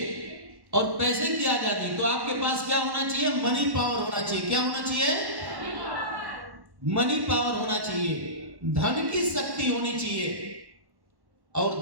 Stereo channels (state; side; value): late; left; 1.1 ms